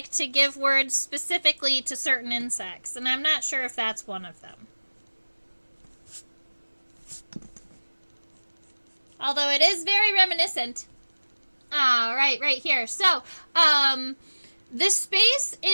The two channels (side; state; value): both; inverted; correlation -1.00